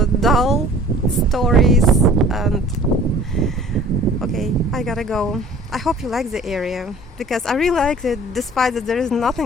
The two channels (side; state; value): both; normal; correlation 0.49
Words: dull stories, and okay, I gotta go. I hope you like the area because I really like it, despite that there is